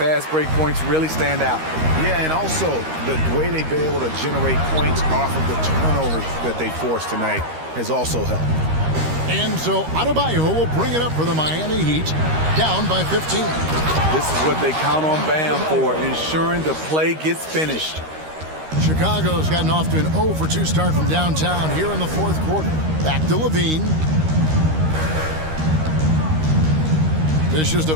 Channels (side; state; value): left; late; 13 ms